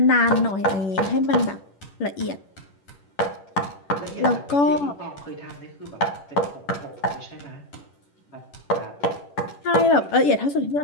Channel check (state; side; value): late; right; 10 ms